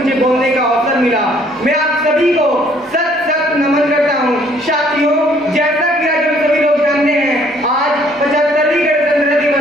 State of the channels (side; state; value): both; normal; correlation 0.61